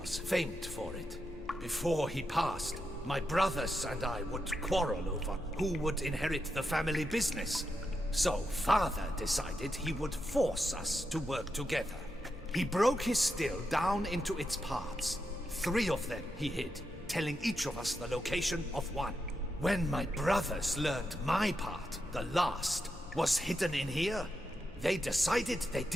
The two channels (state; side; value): normal; both; correlation 0.86